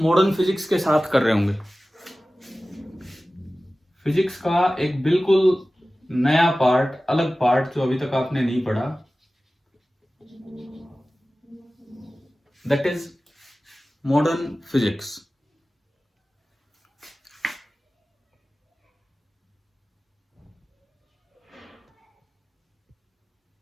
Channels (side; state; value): both; normal; correlation 0.96